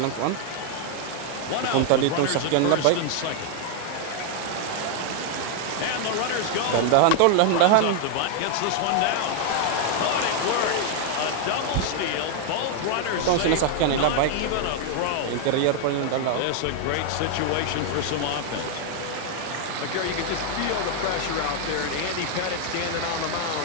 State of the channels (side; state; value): both; different; correlation 0.00